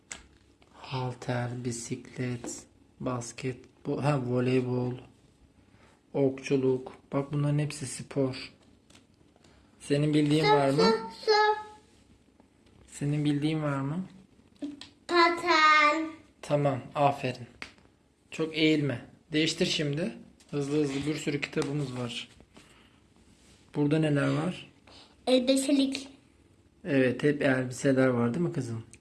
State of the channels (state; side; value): identical; both; correlation 1.00